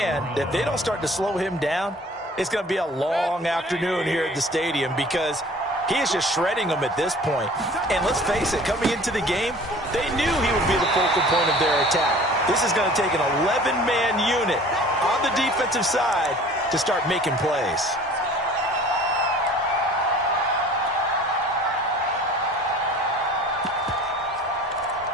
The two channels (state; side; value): normal; both; correlation 0.47